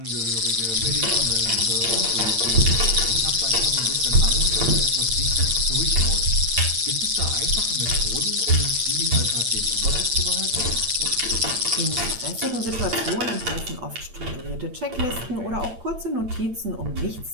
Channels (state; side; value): late; left; 8.8 ms